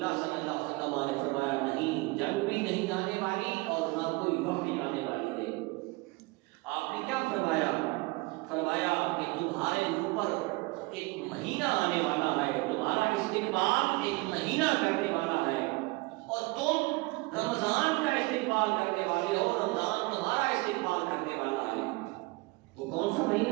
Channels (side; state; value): left; quieter; 24.2 dB